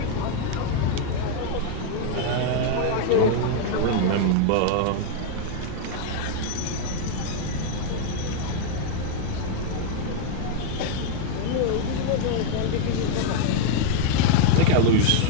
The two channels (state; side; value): different; both; correlation 0.00